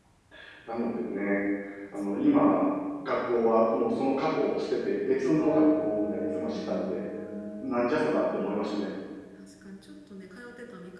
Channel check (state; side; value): identical; both; correlation 1.00